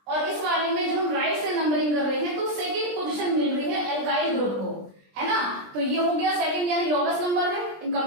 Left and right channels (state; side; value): late; left; 20 ms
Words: और इस वाले में जब हम राइट से नंबरिंग कर रहे हैं तो सेकेंड पोजीशन मिल रही है एल्काइल ग्रुप को, है ना। तो ये हो गया सेकेंड यानी लोवेस्ट नंबर है in